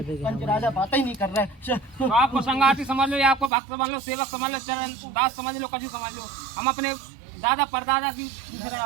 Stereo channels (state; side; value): drops out; left; at 3.5 s